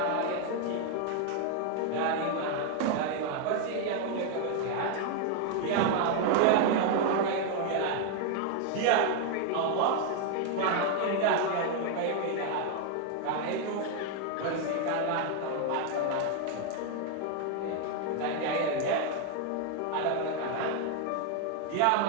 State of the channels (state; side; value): different; both; correlation 0.00